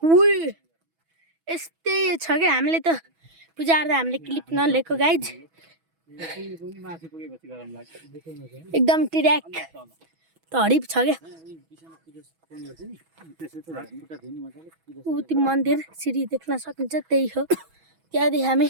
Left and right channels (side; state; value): left; late; 6.1 ms